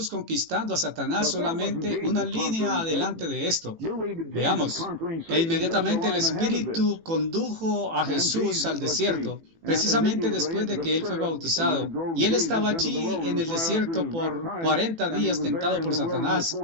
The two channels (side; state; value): left; late; 18 ms